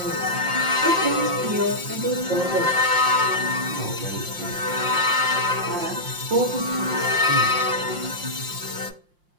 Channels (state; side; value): late; left; 5.7 ms